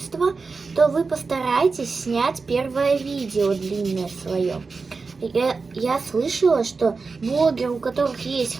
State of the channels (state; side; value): quieter; left; 4.4 dB